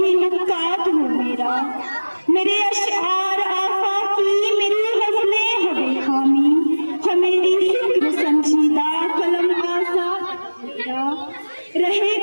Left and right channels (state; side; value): inverted; both; correlation -1.00